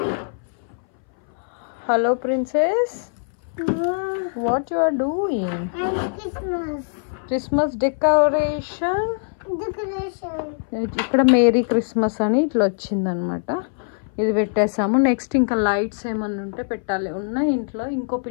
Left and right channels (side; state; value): right; silent; 61 dB below the other